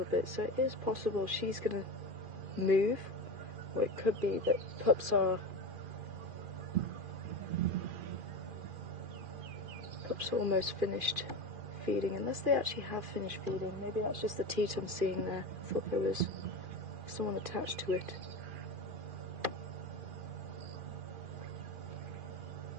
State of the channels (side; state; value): left; late; 2.4 ms